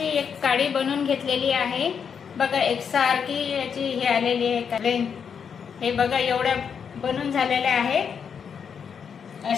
एक काडी बनवून घेतलेली आहे। बघा, एकसारखी याची हे आलेली आहे। हे बघा, एवढ्या बनवून झालेल्या आहेत।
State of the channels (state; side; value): quieter; right; 6.9 dB